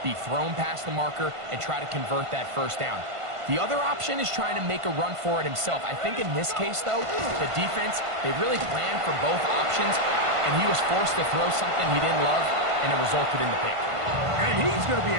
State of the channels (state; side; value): late; left; 1.5 ms